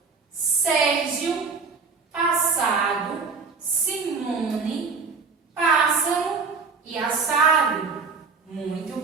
Sérgio, passado, Simone, pássaro e assado. Muito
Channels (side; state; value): left; quieter; 4.8 dB